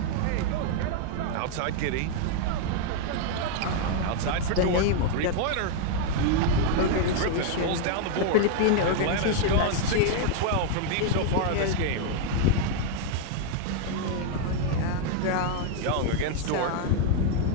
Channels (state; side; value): different; both; correlation 0.00